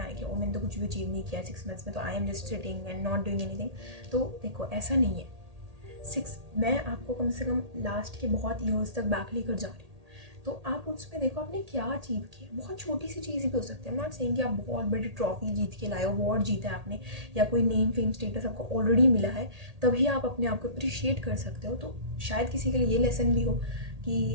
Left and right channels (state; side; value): late; left; 1.8 ms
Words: आए कि मैंने तो कुछ भी अचीव नहीं किया 6 मंथ्स में, तो I am just sitting and not doing anything. तो देखो ऐसा नहीं है। मैं आपको कम से कम लास्ट के बहुत ईयर्स तक बैक लेकर जा रही हूँ, तो आप उसमें देखो आपने क्या अचीव किया। बहुत छोटी सी चीज़ भी हो सकती है। नॉट सेइंग कि आप बहुत बड़ी ट्रॉफी जीत के लाए हो, अवार्ड जीता है आपने, या कोई नेम फेम स्टेटस आपको ऑलरेडी मिला है, तभी आप अपने आप को अप्रिशिएट कर सकते हो। तो शायद किसी के लिए ये लेसन भी हो